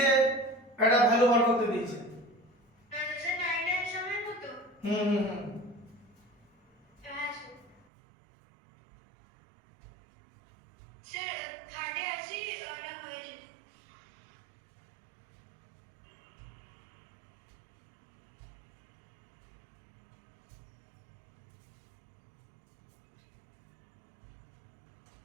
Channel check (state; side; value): drops out; left; at 7.8 s